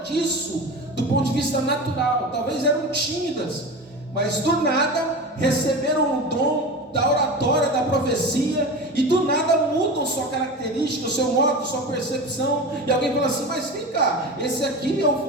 disso do ponto de vista natural, talvez eram tímidas, mas do nada receberam o dom da oratória, da profecia, e do nada mudam sua característica, o seu modo, sua percepção, e alguém fala assim: mas vem cá, esse aqui é o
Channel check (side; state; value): both; normal; correlation 0.29